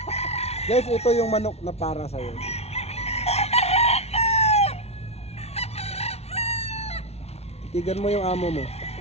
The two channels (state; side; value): late; right; 0.31 ms